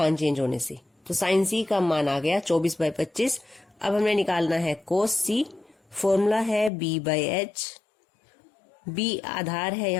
चेंज होने से। तो साइन C का मान आ गया 24/25। अब हमें निकालना है कोस C। फॉर्मूला है B/H। B आधार है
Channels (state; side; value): drops out; right; at 6.7 s